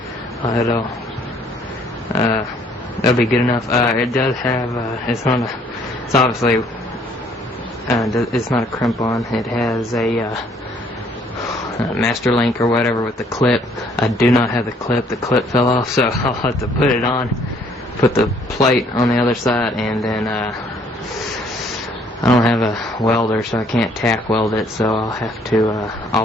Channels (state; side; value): normal; both; correlation 0.62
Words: it'll be good enough. It does have it's obviously it's not a crimp-on. It has a master link or whatever with the clip. I do not have the clip. The clip fell off, so I'll have to put it on, put the plate on the other side, and then I don't have a welder, so I can't tack weld it, so I'll have to